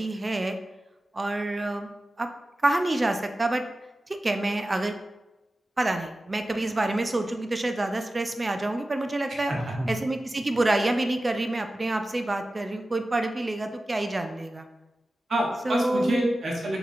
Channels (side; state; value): both; normal; correlation 0.95